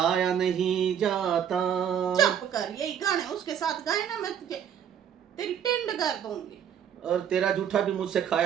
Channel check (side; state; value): left; quieter; 9.0 dB